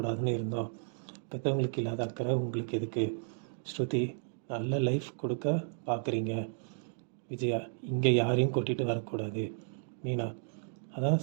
இருந்தோம். பெற்றவங்களுக்கு இல்லாத அக்கறை உங்களுக்கு எதுக்கு? ஸ்ருதி நல்ல லைஃப் கொடுக்க பார்க்குறீங்க. விஜயா இங்கே யாரையும் கூட்டிகிட்டு வரக்கூடாது. மீனா அதான்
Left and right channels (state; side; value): silent; left; digital silence